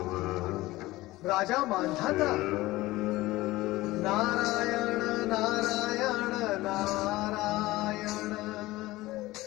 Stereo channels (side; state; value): right; quieter; 18.5 dB